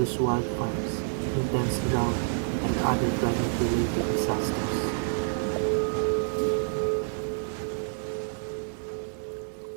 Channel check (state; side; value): silent; left; digital silence